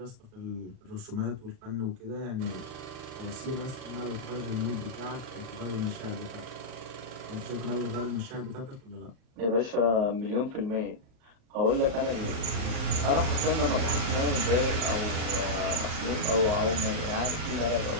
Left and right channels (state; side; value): late; left; 38 ms